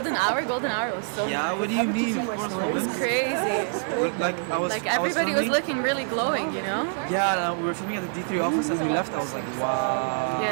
Hour? Golden Hour was so Yeah, good. what do you mean? Of course, It's crazy. Like Everybody was looking really glowing, you know? Yeah, we were filming at the D3 office and we left. I was like, wow.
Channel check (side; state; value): left; silent; 61 dB below the other